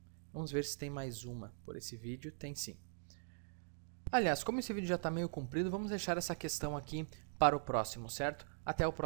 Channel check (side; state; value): left; silent; digital silence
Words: Vamos ver se tem mais uma por esse vídeo. Tem sim. Aliás, como esse vídeo já está meio comprido, vamos deixar essa questão aqui para o próximo, certo? Até o